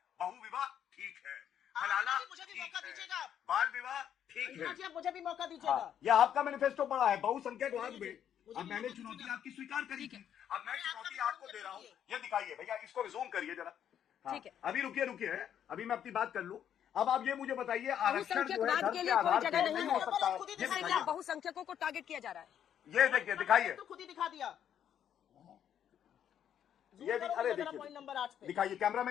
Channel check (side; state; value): right; quieter; 9.5 dB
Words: बहुविवाह ठीक है, हलाला अंजना जी, मुझे भी ठीक मौका है, दीजिएगा आप। बाल विवाह ठीक अंजना है। जी, आप मुझे भी मौका दीजिएगा। हाँ, ये आपका मैनिफेस्टो पड़ा है बहुसंख्यकवाद में। मुझे अब भी मैंने मौका चुनौती दीजिएगा। आपकी स्वीकार करी थी, अब मैं मैं आपका चुनौती भी आपको जवाब दे रहा हूँ। दीजिए। ये दिखाइए भैया, इसको रिज्यूम करिए जरा। हाँ, ठीक है। अभी रुकिए रुकिए, अभी मैं अपनी बात कर लूं। अब आप ये मुझे बताइए, आरक्षण जो है बहुसंख्यकवाद धर्म के के लिए कोई आधार जगह पर नहीं नहीं है। हो सकता है। खुद ही ये दिखाइए। क्या दिखाइए, बहुसंख्यकों को टारगेट किया जा रहा है? ये देखिए, दिखाइए, तो खुद ही दिखा दिया। ये करो अरे जरा देखिए, पॉइंट नंबर 8 पे। दिखाइए